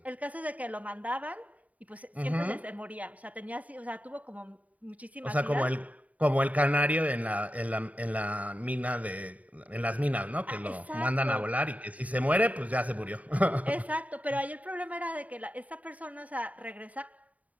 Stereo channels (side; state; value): left; late; 0.071 ms